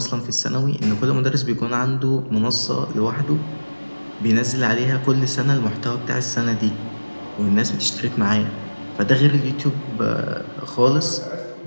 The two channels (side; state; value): both; inverted; correlation -1.00